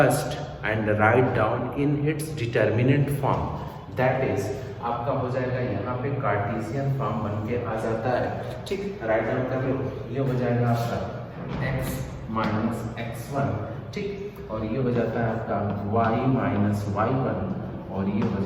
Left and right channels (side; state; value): both; identical; correlation 1.00